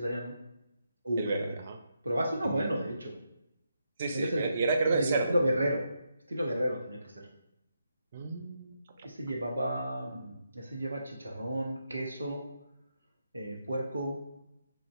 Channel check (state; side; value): inverted; both; correlation -0.82